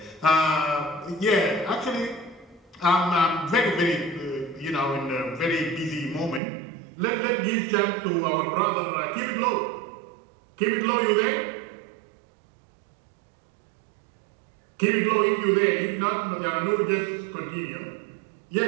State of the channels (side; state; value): left; drops out; at 6.4 s